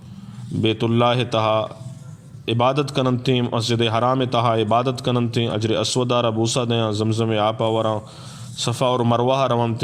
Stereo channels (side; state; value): both; identical; correlation 1.00